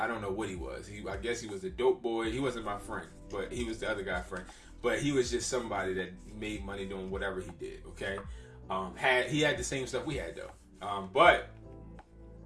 don't know what he was. I guess he was a dope boy. He wasn't my friend, but he was the other guy's friend. But he was just somebody that made money doing whatever he did, okay? He had the same stuff we had, though. But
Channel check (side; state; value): both; identical; correlation 1.00